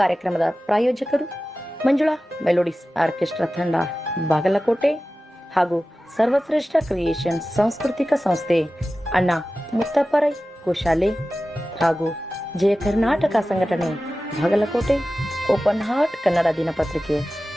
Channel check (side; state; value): both; normal; correlation 0.95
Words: ಪ್ರಾಯೋಜಕರು ಮಂಜುಳಾ ಮೆಲೋಡಿಸ್ ಆರ್ಕೆಸ್ಟ್ರಾ ತಂಡ ಬಾಗಲಕೋಟೆ ಹಾಗೂ ಸರ್ವಶ್ರೇಷ್ಠ ಕ್ರಿಯೇಷನ್ ಸಾಂಸ್ಕೃತಿಕ ಸಂಸ್ಥೆ ಅಣ್ಣ ಮುತ್ತಪ್ಪರೈ ಗೋಶಾಲೆ ಹಾಗೂ ಜಯ ಕರ್ನಾಟಕ ಸಂಘಟನೆ ಬಾಗಲಕೋಟೆ, ಓಪನ್ ಹಾರ್ಟ್ ಕನ್ನಡ ದಿನಪತ್ರಿಕೆ